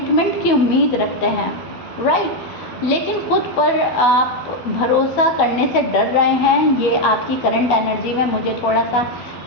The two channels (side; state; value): right; late; 12 ms